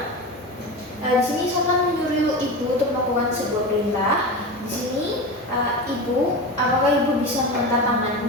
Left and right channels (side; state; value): both; normal; correlation 0.25